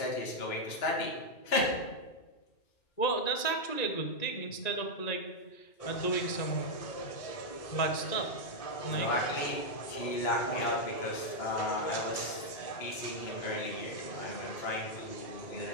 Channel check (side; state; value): right; late; 1.9 ms